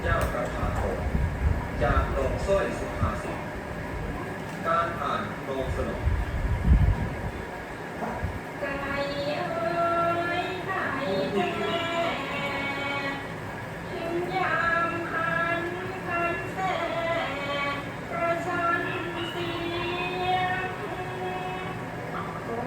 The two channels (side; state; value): both; identical; correlation 1.00